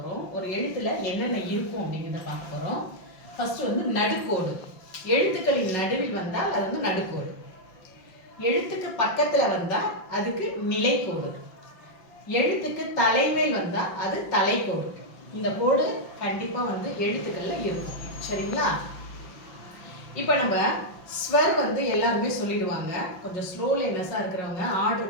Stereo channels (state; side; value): late; right; 5.5 ms